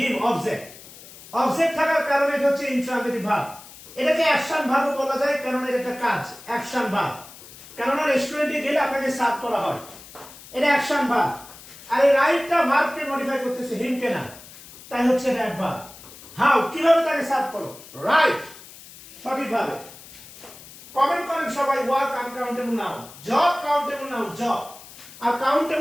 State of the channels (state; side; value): noise; left; hiss, 18 dB below the sound